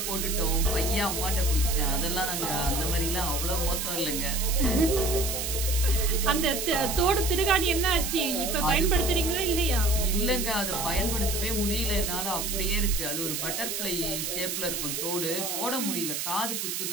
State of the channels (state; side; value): noise; right; hiss, 3 dB below the sound